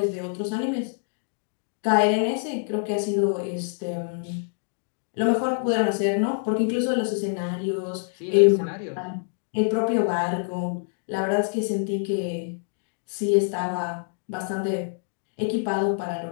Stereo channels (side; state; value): right; silent; digital silence